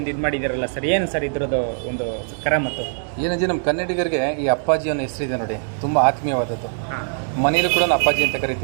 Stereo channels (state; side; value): silent; left; digital silence